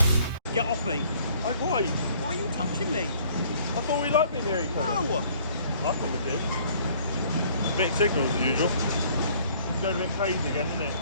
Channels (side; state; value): both; inverted; correlation -0.58